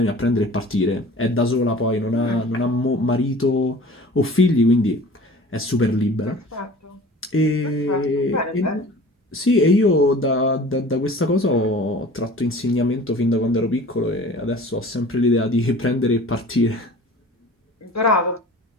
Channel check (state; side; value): normal; both; correlation 0.44